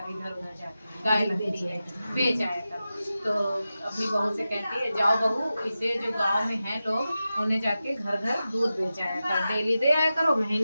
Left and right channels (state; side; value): inverted; both; correlation -0.93